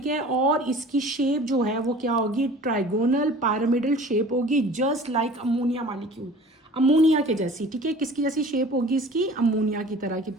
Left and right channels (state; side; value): normal; both; correlation 0.45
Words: है, और इसकी शेप जो है वो क्या होगी, ट्राइगोनल पिरामिडल शेप होगी, just like ammonia molecule, ammonia के जैसी, ठीक है। किसकी जैसी शेप होगी इसकी, अमोनिया की तरह की,